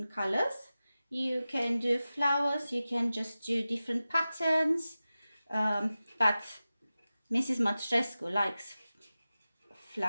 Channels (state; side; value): inverted; both; correlation -0.95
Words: colors. You can do flowers, you can just do different patterns, but Mrs. Matrescu likes